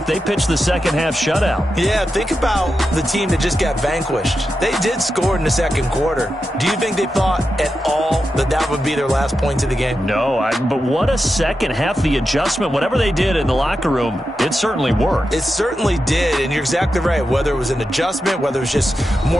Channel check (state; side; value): normal; both; correlation 0.89